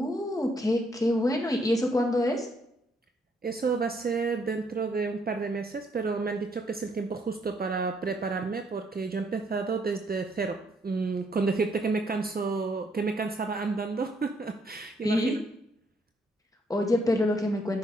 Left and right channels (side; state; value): both; normal; correlation 0.70